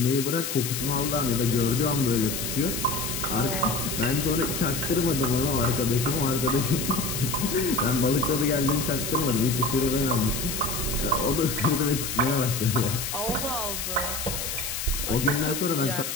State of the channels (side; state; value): left; noise; hiss, 4 dB below the sound